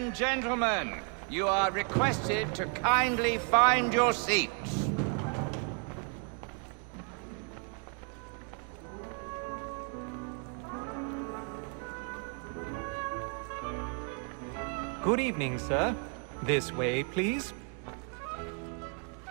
gentlemen, you are requested to kindly find your seats. Good evening, sir. This way, please.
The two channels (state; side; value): quieter; left; 39.9 dB